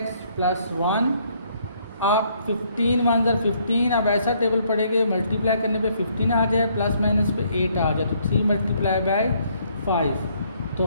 plus 1। आप 15 1 ज़ा 15, अब ऐसा टेबल पढ़ेंगे मल्टीप्लाई करने पे 15 आ जाए, प्लस माइनस पे 8 आ जाए, तो 3 मल्टीप्लाई बाय 5।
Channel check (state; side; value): inverted; both; correlation -0.67